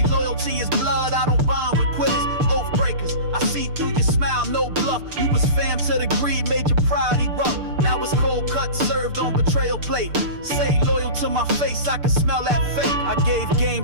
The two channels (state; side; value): late; left; 6.7 ms